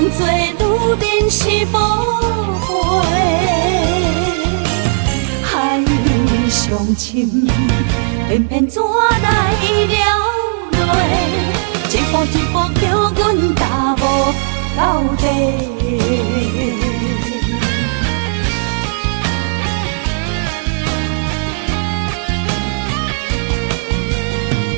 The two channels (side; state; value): left; silent; 68 dB below the other